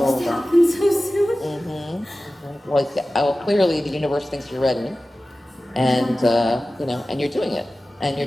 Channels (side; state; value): both; normal; correlation 0.96